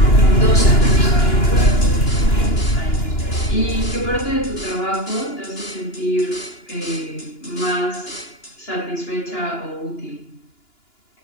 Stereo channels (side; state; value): right; late; 2.9 ms